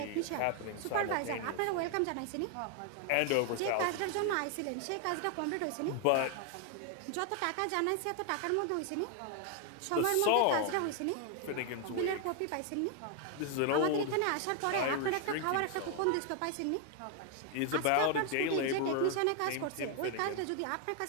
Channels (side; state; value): both; different; correlation 0.00